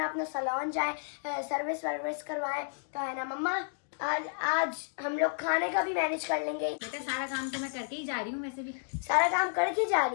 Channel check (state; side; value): silent; right; digital silence